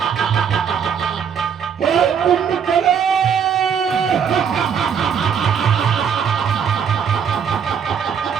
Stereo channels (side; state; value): left; quieter; 7.4 dB